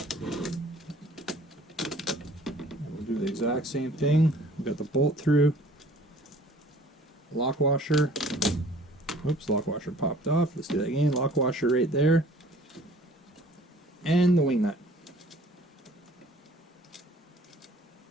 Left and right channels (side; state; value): both; normal; correlation 0.52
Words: We'll do the exact same thing. We've got the bolt through, lock washer. Oops, lock washer popped off. Let's do that again. Lock washer right there. And the wing nut.